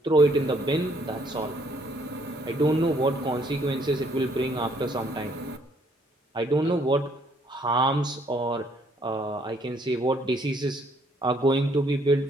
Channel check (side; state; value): both; normal; correlation 0.66